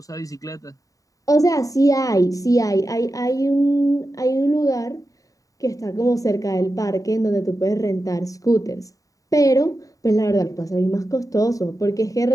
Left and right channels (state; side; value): late; right; 0.16 ms